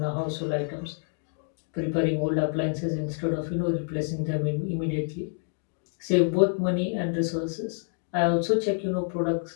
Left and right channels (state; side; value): silent; right; digital silence